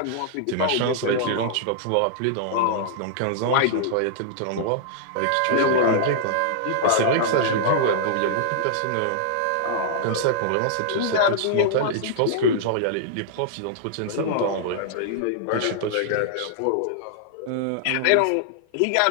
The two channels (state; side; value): different; both; correlation -0.01